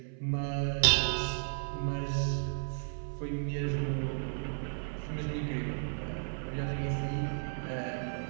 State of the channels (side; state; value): left; silent; 55 dB below the other